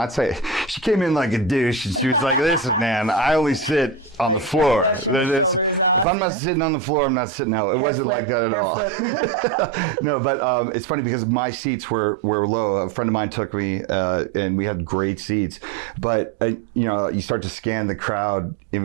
saying. She came in like a douche, and she was like, listen, man, I only sit on the floor. Brushing the shoulders off. If I'm not sitting on the floor, I'm not sitting out. It wasn't like that at all. No, but it's funny because my seats were low. A friend of mine took me, and we had great seats. But you start to scan the crowd in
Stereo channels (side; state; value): left; drops out; at 6.1 s